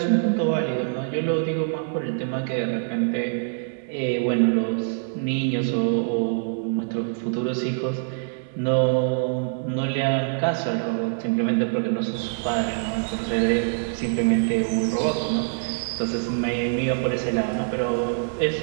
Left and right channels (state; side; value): silent; left; digital silence